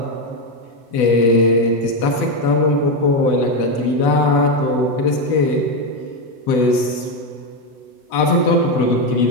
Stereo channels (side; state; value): right; late; 8.0 ms